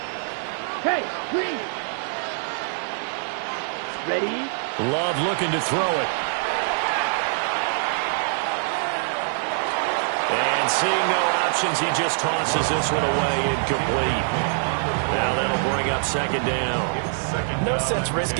Hey, green. Ready. Love looking to throw it. And seeing no options, he just tosses this one away incomplete. Now that'll bring up 2nd down. No sense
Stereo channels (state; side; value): silent; left; digital silence